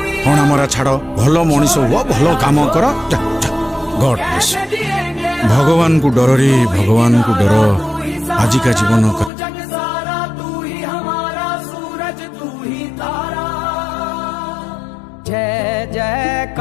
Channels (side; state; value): right; drops out; at 9.3 s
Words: हणा मरा छाड़ो भलो मनीष हुआ भलो काम कर जा जा गॉड ब्लेस भगवान को डर रे भगवान को डर आज का जीवन का जय